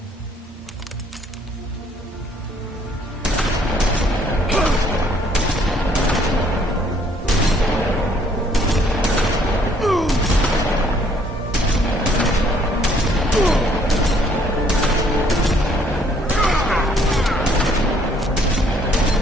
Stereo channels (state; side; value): normal; both; correlation 0.63